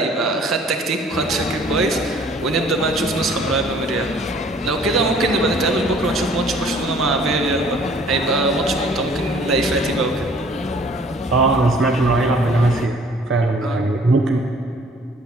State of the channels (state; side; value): normal; both; correlation 0.55